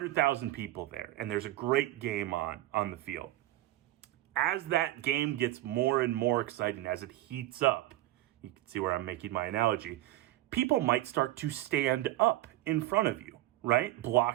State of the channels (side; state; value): left; quieter; 15.9 dB